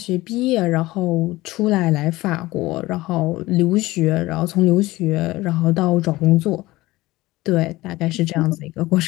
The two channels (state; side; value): quieter; right; 18.8 dB